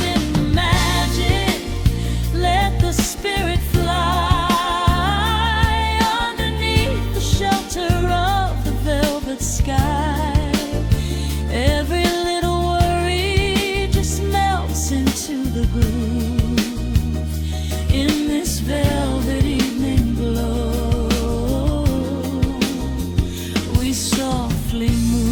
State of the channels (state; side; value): identical; both; correlation 1.00